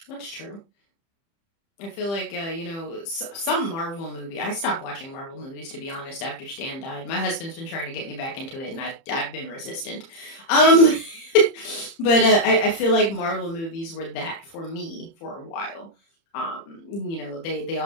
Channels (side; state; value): right; late; 30 ms